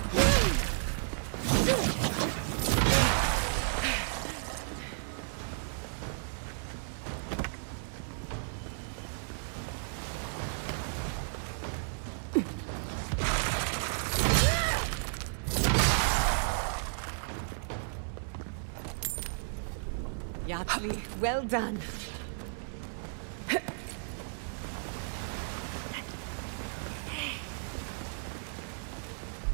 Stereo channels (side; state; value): left; silent; 56 dB below the other